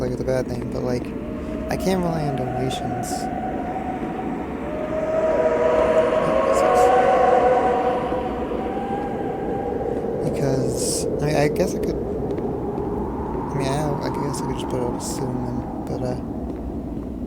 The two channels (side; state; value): both; identical; correlation 1.00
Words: a bad thing, but I can't rely on donations. Because I guess I could. I guess I could just put it up soon, but